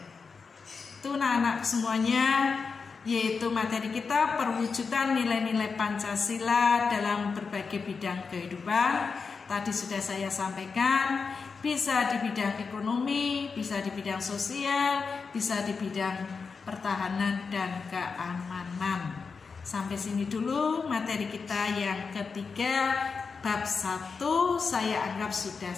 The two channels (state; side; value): quieter; right; 5.1 dB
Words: Itu anak-anak semuanya, yaitu materi kita perwujudan nilai-nilai Pancasila dalam berbagai bidang kehidupan. Tadi sudah saya sampaikan, bisa di bidang ekonomi, bisa di bidang sosial, bisa di bidang pertahanan dan keamanan. Sampai sini dulu materi kita yang ketiga, bab 1 saya anggap sudah